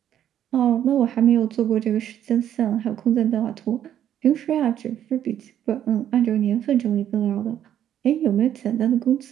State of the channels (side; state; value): left; quieter; 10.5 dB